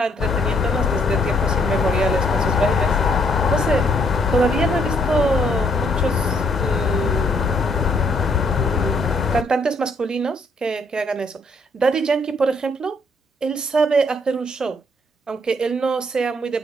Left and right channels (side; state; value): both; normal; correlation 0.68